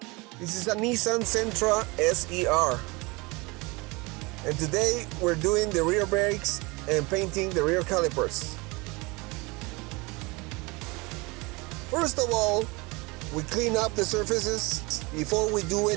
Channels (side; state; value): left; quieter; 25.5 dB